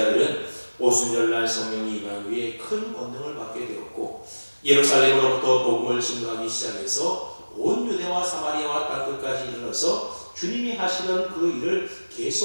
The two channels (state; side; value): inverted; both; correlation -1.00